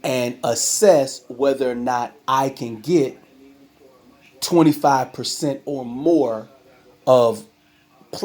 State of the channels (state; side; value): identical; both; correlation 1.00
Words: and assess whether or not I can get 25% or more of